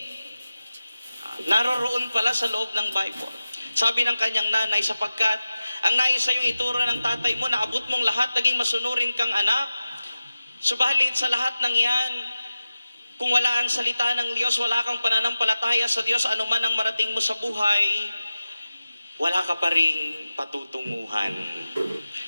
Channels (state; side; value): inverted; both; correlation -0.95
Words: Naroon pala sa loob ng Bible. Sabi ng kanyang nanay, sapagkat ang nais sa iyong ituro ng tatay mo, naabot mong lahat, naging masunurin kang anak. Subalit sa lahat ng yan, kung wala ang salita ng Diyos, wala kang pananampalataya sa Diyos, anuman ang marating mo sa buhay, wala ka pa ring patutunguhan.